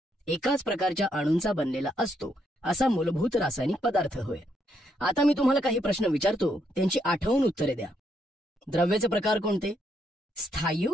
एकाच प्रकारच्या अणूंचा बनलेला असतो असा मूलभूत रासायनिक पदार्थ होय. आता मी तुम्हाला काही प्रश्न विचारतो, त्यांची आठवून उत्तरे द्या. द्रव्याचे प्रकार कोणते?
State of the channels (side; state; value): both; normal; correlation 0.75